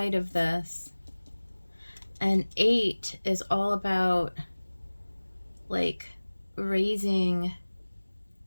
of this. And 8 is all about like raising,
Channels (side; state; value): both; inverted; correlation -1.00